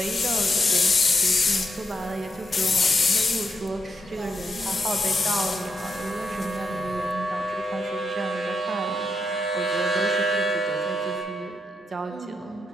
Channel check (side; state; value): both; normal; correlation 0.82